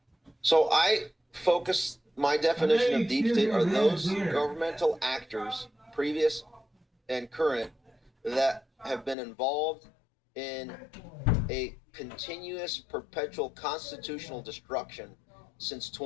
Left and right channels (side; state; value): right; drops out; at 9.2 s